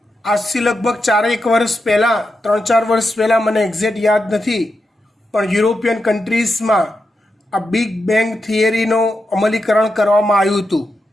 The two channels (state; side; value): normal; both; correlation 0.87